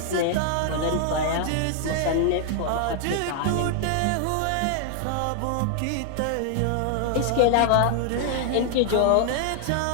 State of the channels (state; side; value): different; both; correlation 0.00